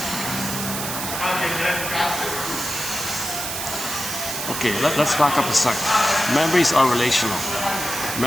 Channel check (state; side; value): noise; right; hiss, 4 dB below the sound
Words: Okay, let's back up a sec. Memories are relational.